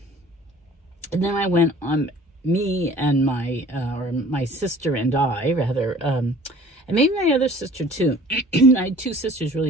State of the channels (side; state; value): both; normal; correlation 0.49